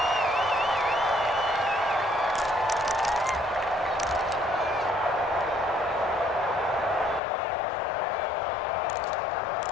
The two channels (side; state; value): right; drops out; at 7.2 s